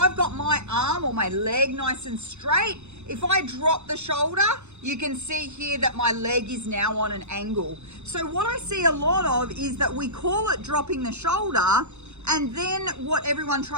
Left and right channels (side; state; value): left; late; 0.82 ms